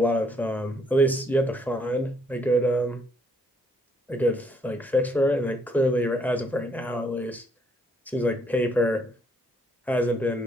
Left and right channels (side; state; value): both; normal; correlation 0.69